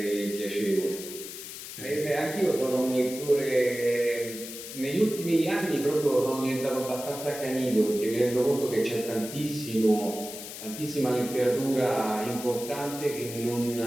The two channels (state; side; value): noise; left; hiss, 10 dB below the sound